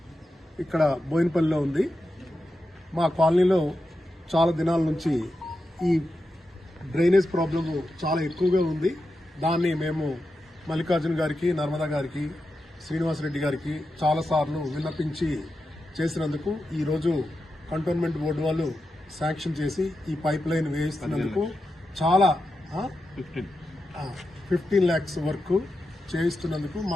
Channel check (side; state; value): both; normal; correlation 0.89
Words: ఇక్కడ బోయినపల్లిలో ఉంది. మా కాలనీలో చాలా దినాల నుంచి ఈ డ్రైనేజ్ ప్రాబ్లమ్ చాలా ఎక్కువగా ఉంది. దాన్ని మేము మల్లికార్జున గారికి, నర్మదా గారికి, శ్రీనివాసరెడ్డి గారికి చాలాసార్లు విన్నపించి చేసినందుకు ఈరోజు కంటోన్మెంట్ బోర్డు వాళ్ళు శాంక్షన్ చేసి ఈ పైప్ లైన్ వేయిస్తున్నందుకు చాలా 15 lakhs వరకు చేయిస్తున్నందుకు